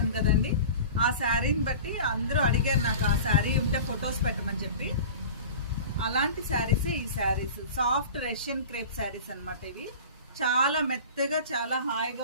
కదండి. ఆ శారీని బట్టి అందరూ అడిగారు నాకు ఆ శారీ ఉంటే ఫొటోస్ పెట్టమని చెప్పి. అలాంటి శారీసే ఈ saris, soft Russian crepe saris అనమాట. ఇవి చాలా మెత్తగా చాలా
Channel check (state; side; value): inverted; both; correlation -0.37